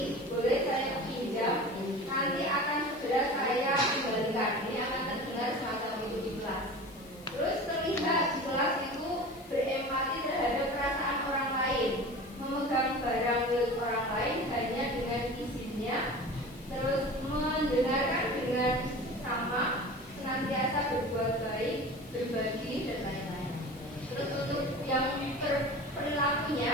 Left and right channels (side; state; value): left; noise; hiss, 23 dB below the sound